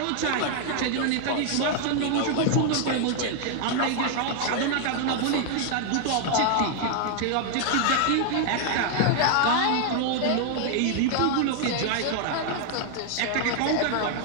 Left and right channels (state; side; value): different; both; correlation 0.00